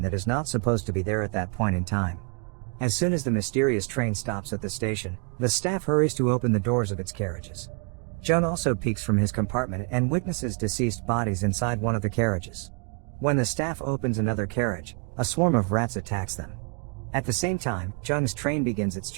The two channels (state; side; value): quieter; left; 35.1 dB